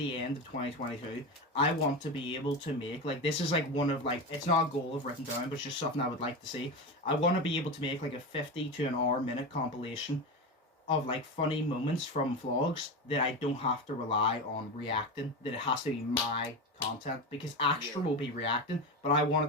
end of 2022, I want to be able to make, like, this is like one of, like, it's not a goal I've written down, but it's just something I would like to see. I want to be able to make like a 50 to an hour minute compilation of like funny moments from vlogs that I don't have to rely on reacting, that it has to be my content, because Extra will be reacting, but I want it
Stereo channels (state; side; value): normal; both; correlation 0.20